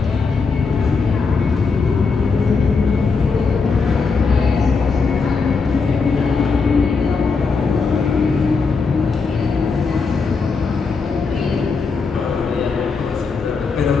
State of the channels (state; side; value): quieter; right; 4.7 dB